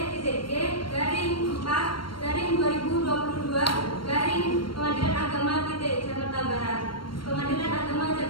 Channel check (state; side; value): late; right; 0.73 ms